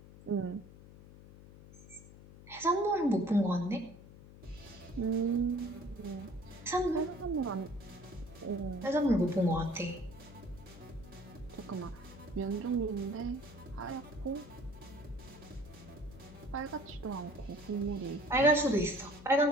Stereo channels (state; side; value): noise; left; hum, 18 dB below the sound